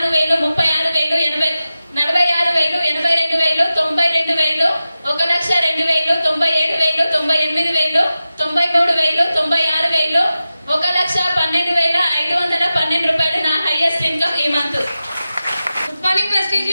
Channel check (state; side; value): inverted; both; correlation -0.94